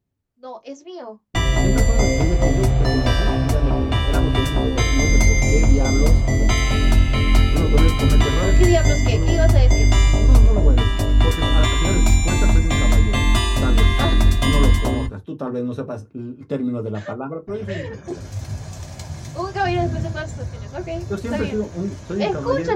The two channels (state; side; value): identical; both; correlation 1.00